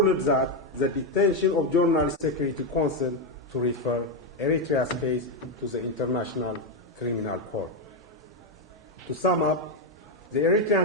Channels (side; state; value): both; normal; correlation 0.05